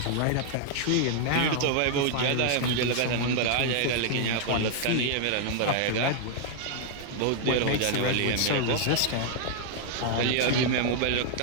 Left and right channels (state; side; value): different; both; correlation 0.00